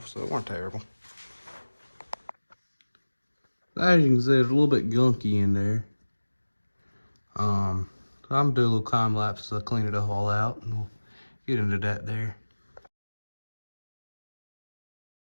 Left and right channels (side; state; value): both; inverted; correlation -1.00